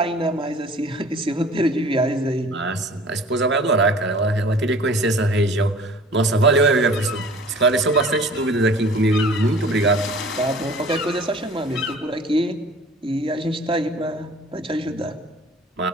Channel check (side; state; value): both; normal; correlation 0.47